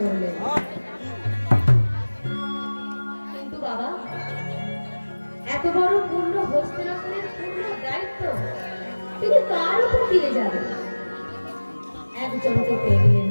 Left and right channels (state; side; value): inverted; both; correlation -1.00